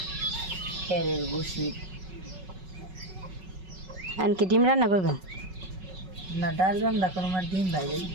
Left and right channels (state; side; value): late; left; 5.4 ms